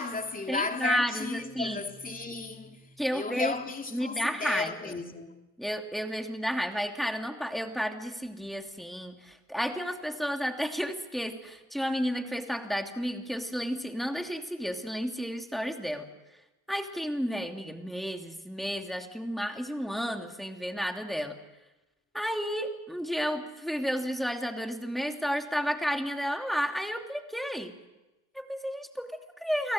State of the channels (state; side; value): normal; both; correlation 0.84